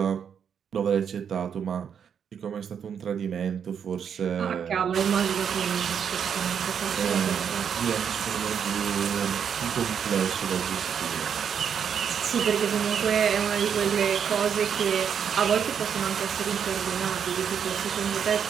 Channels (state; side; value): quieter; left; 7.7 dB